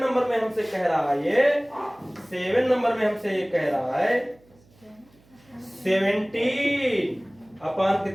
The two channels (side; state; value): right; noise; hum, 30 dB below the sound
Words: नंबर में हमसे कह रहा है ये, 7 नंबर में हमसे ये कह रहा है 17 अपॉन